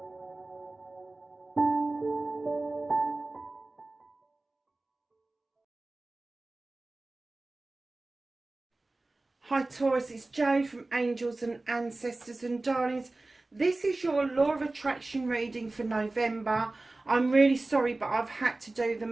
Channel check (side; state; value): left; quieter; 3.0 dB